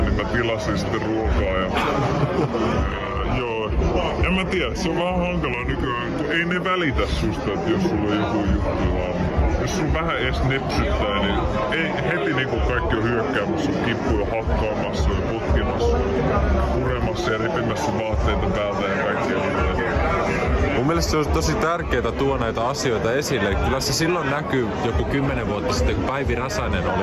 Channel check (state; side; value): identical; both; correlation 1.00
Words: niin mä tilasin sitten ruokaa ja joo, en mä tiedä, se on vähän hankalaa nykyään, kun ei ne välitä susta, että jos sulla on joku juttu vaan. Jos sun vähän edes nepsyttää, niin ei heti niinku kaikki on hyökkäämässä sun kippuja, hakkaamassa ja potkimassa ja puremassa ja repimässä sun vaatteita päältä ja kaikkea. Mun mielestä se on tosi tärkeää tuoda näitä asioita esille. Kyllä se silloin näkyy joku 10 vuotta sitten, kun Päivi Räsänen